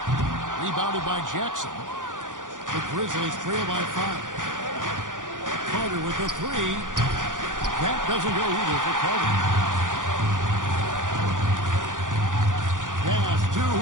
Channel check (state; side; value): late; left; 0.88 ms